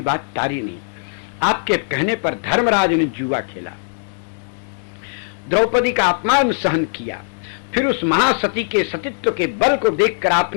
बात टारी नहीं। आपके कहने पर धर्मराज ने जुआ खेला, द्रौपदी का अपमान सहन किया, फिर उस महासती के सतीत्व के बल को देखकर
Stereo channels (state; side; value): silent; right; digital silence